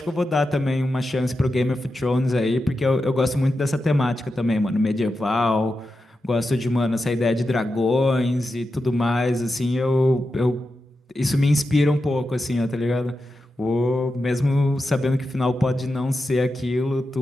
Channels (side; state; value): both; normal; correlation 0.89